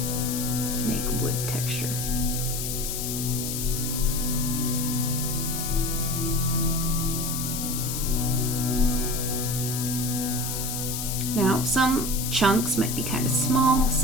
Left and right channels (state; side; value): noise; left; hiss, 4 dB below the sound